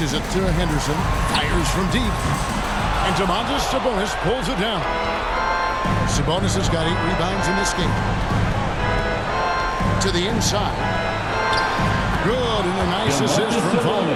it to Henderson. Fires from deep. And Domantas Sabonis pulls it down. Sabonis has got 8 rebounds in this game. To the inside. Good, and a nice assist from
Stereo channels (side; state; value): both; identical; correlation 1.00